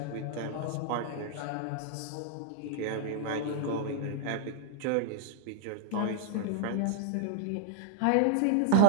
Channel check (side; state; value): both; different; correlation 0.00